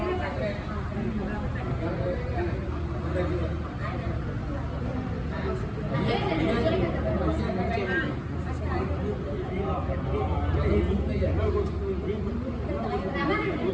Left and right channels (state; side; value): identical; both; correlation 1.00